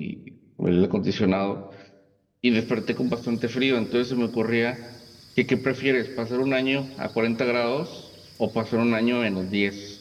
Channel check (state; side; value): identical; both; correlation 1.00